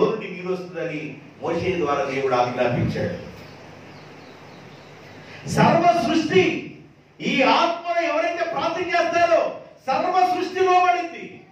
నుండి నీరు వస్తుందని మోషే ద్వారా దేవుడు ఆజ్ఞాపించాడు. సర్వ సృష్టి ఈ ఆత్మలో ఎవరైతే ప్రార్థన చేస్తారో సర్వ సృష్టి లోబడింది.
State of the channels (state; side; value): identical; both; correlation 1.00